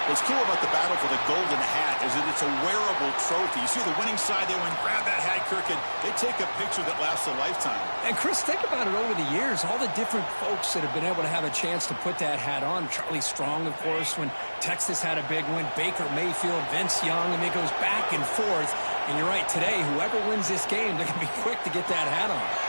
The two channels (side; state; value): both; inverted; correlation -1.00